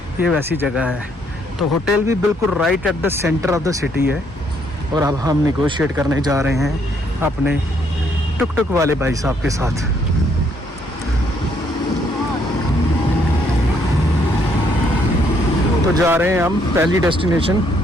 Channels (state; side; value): normal; both; correlation 0.70